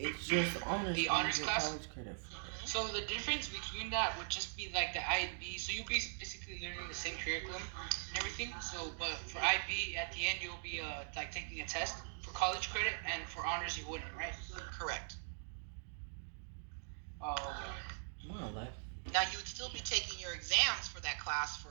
just honors. The you honors get class? college credit for. so the difference between that would just be like the IB. So you'll be basically learning the same curriculum and everything. So but for IB at the end you'll be like taking a test for college credit, and for honors you wouldn't, right? Correct. Oh, okay. More or less. Now you would still be taking your exams for that class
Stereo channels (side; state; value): left; silent; digital silence